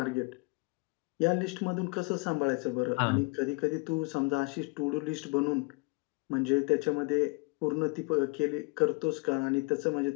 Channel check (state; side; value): quieter; right; 29.9 dB